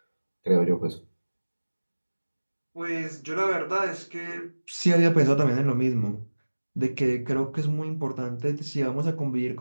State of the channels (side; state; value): both; inverted; correlation -1.00